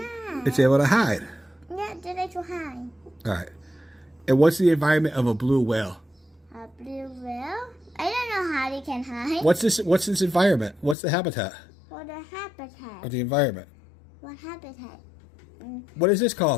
It's able to hide. Yeah, they like to hide. All right. And what's the environment of a blue whale? A blue whale? I don't know how they can hide. What's this environment? What's the habitat What the habitat? of the environment? What habitat? What is this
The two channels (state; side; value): drops out; right; at 11.0 s